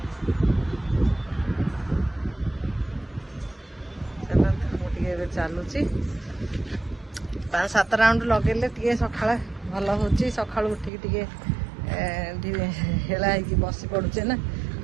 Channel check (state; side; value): drops out; left; at 10.9 s